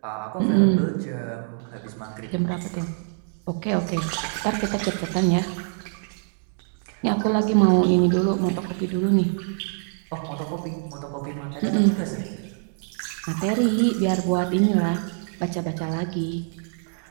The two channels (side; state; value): left; silent; digital silence